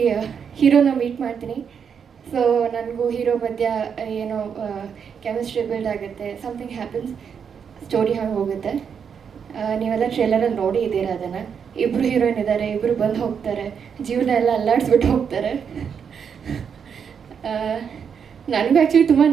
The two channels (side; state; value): left; quieter; 7.0 dB